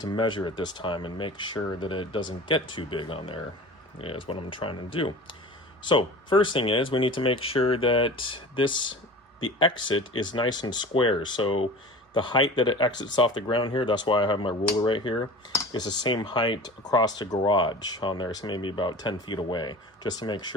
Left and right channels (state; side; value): normal; both; correlation 0.37